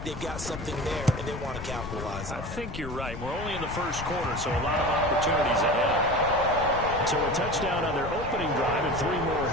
they've got something there, and they want to capitalize on it. I think you're right. We're only in the 1st quarter, so a lot of opportunities ahead. So a touchdown on their opening drive and 3 more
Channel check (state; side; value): noise; left; rumble, 9 dB below the sound